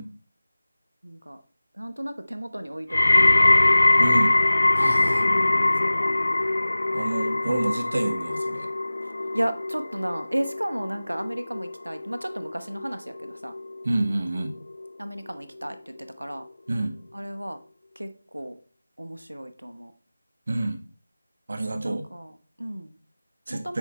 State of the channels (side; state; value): both; inverted; correlation -0.98